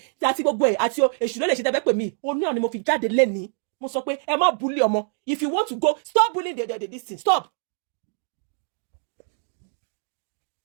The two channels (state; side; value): silent; left; 61 dB below the other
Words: àti gbogbo ẹ̀ àti èṣù ló lè ṣe tẹ́fẹ́ pè mí òun náà ni mo fi jáde lẹ́nu mo sọ pé ẹ má bully ọmọ if you want to go stop bullying this thing stop.